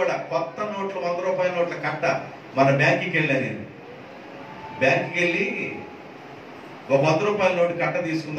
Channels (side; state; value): both; identical; correlation 1.00